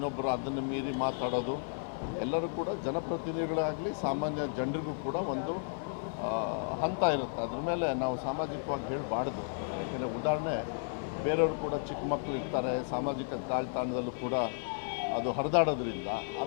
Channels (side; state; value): right; silent; 56 dB below the other